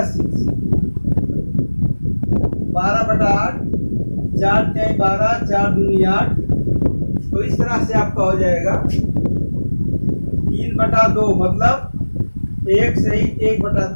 6, 12/8, 4 3 12, 4 दूनी 8। तो इस तरह से आपका हो जाएगा 3/2, मतलब 1 सही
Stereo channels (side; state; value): both; inverted; correlation -1.00